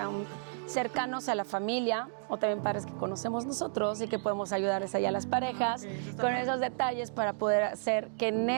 cercanos a la familia o también padres que conocemos nosotros y que podemos ayudarles allá a las parejas con esos detalles para poder hacer que en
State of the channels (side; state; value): left; silent; digital silence